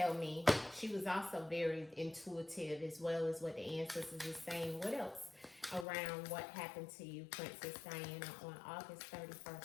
me? She was also very intuitive as well as what the ancestors is saying. What else around what happened to you, Princess Diana, on August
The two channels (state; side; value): drops out; right; at 5.9 s